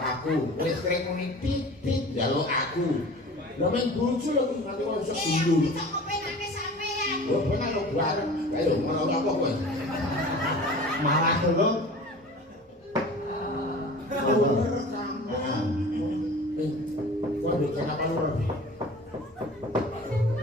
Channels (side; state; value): both; normal; correlation 0.40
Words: aku, listrik muni titit jaluk aku. Lah mung bojo lho kuwi nganti kok iso dulu. Bisa kepenane sampean. Oh, penak lho bareng. Ayo ngono apa kowe? malah dulu. Waduh, kenapa lu rapi?